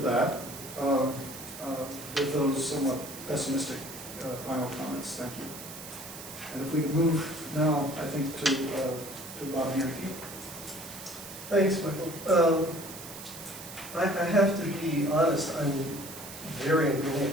that with those somewhat pessimistic final comments. Thank you. And if we could move now, I think, to Bob Yankee. Thanks, Michael. I have to be honest, I'm very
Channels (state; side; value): noise; right; hiss, 12 dB below the sound